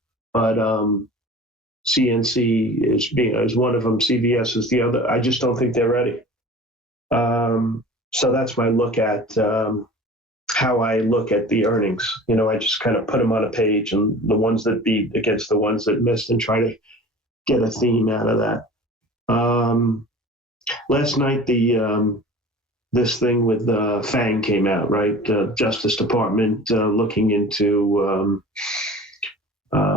But CNC is one of them. CVS is the other. I just don't think they're ready. So that's my look at how I look at the earnings. I just kind of put them on a page, and the ones that beat against the ones that missed, and try to get a theme out of that. Last night, this thing with FANG came out, right? Justice Department looking into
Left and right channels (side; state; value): both; normal; correlation 0.40